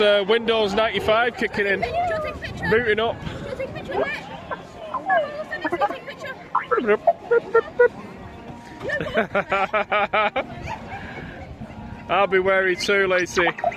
Windows 95 kicking in. Booting up. I'll be wary too, Lacey.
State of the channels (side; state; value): both; identical; correlation 1.00